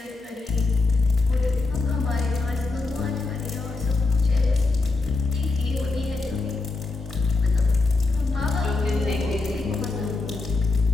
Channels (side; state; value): right; quieter; 3.6 dB